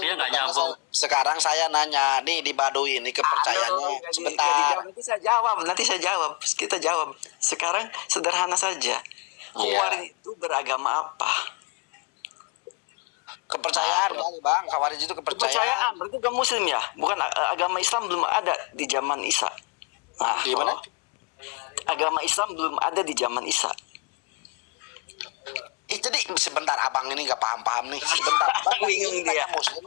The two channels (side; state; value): right; quieter; 29.7 dB